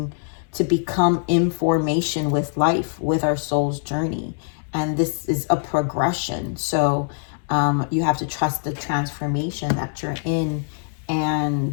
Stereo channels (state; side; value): silent; right; 63 dB below the other